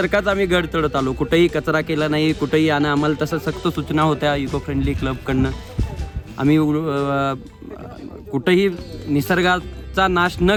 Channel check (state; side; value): identical; both; correlation 1.00